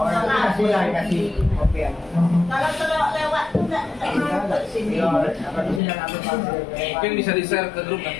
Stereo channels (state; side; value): drops out; right; at 5.8 s